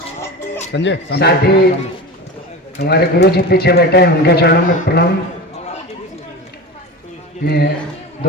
संजय साथ ही हमारे गुरु जी पीछे बैठे हैं, उनके चरणों में प्रणाम। मैं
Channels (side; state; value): both; normal; correlation 0.29